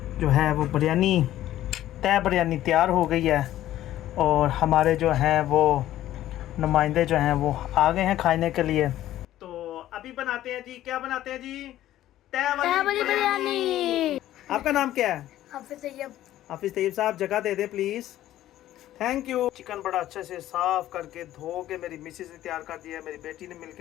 जो है वो बिरयानी, तय बिरयानी तैयार हो गई है। और हमारे जो हैं वो नुमाइंदे जो हैं वो आ गए हैं खाने के लिए। तो अभी बनाते हैं जी, क्या बनाते हैं जी? तय वाली बिरयानी। आपका नाम क्या है? हाफिज तैयब साहब, जगह दे दे प्लीज़। Thank you. चिकन बड़ा अच्छे से साफ करके धो के मेरी मिसेस ने तैयार कर दिया है, मेरी बेटी ने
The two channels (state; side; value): quieter; right; 13.5 dB